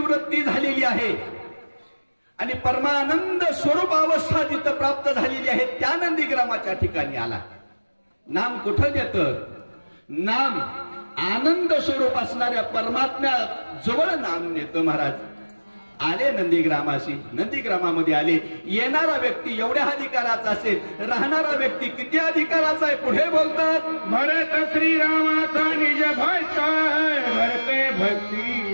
झालेली आहे आणि परमानंद स्वरूप अवस्था जिथं प्राप्त झालेली आहे, त्या नंदीग्रामाच्या ठिकाणी आला. नाम कुठं देतं? नाम आनंद स्वरूप असणाऱ्या परमात्म्या जवळ नाम नेतं महाराज. आले नंदीग्रामाशी. नंदीग्रामामध्ये आले. येणारा व्यक्ती एवढ्या अधिकाराचा असेल, राहणारा व्यक्ती किती अधिकाराचा आहे? पुढे बोलतात, भरत श्रीरामाचा निज भक्त, भरते भक्ती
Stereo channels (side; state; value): both; inverted; correlation -1.00